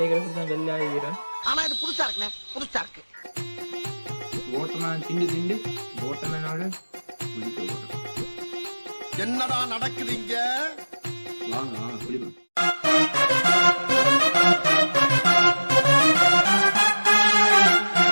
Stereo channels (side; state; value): both; inverted; correlation -1.00